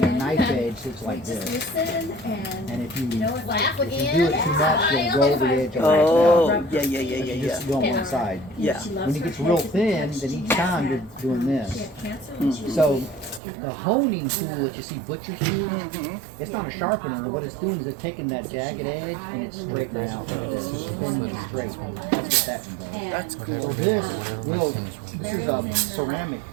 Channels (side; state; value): left; drops out; at 13.4 s